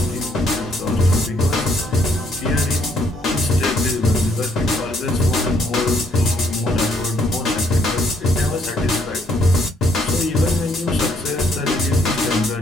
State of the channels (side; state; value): both; normal; correlation 0.69